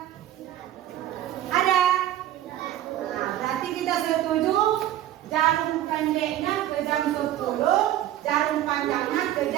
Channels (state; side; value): quieter; left; 12.6 dB